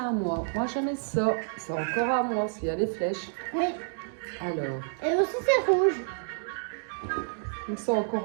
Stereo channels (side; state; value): left; silent; digital silence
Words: moi. Moi, j'en ai ça. C'est encore à moi, s'il y a les flèches. Oui. Alors. Et aussi, c'est rouge. Donc, c'est